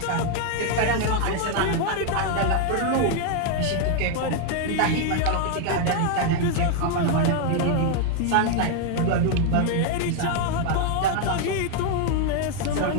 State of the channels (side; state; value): both; different; correlation 0.00